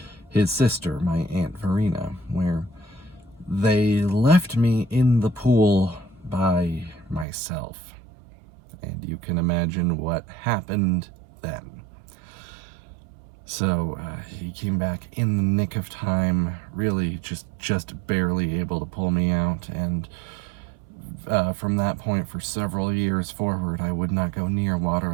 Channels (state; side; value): drops out; left; at 7.2 s